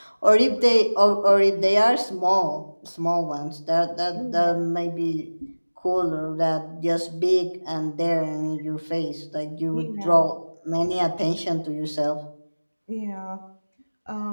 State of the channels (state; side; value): inverted; both; correlation -1.00